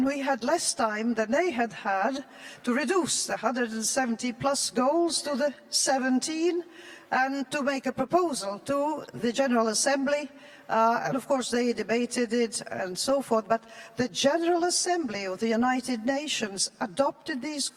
we had less time than they had had to reduce the 170 plus goals to the 17 and to make a proposal to the General Assembly. And of course they debated it and so forth, but the General Assembly of the United Nations adopted these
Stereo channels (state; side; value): identical; both; correlation 1.00